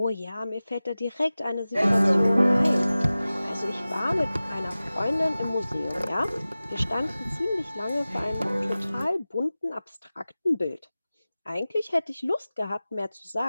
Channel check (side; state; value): both; inverted; correlation -0.97